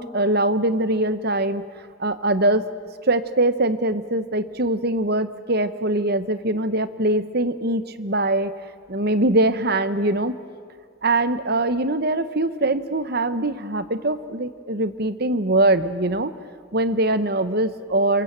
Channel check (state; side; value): normal; both; correlation -0.09